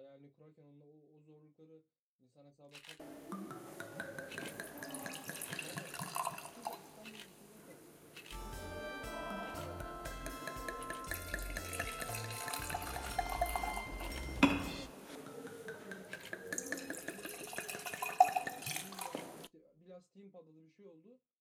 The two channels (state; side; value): identical; both; correlation 1.00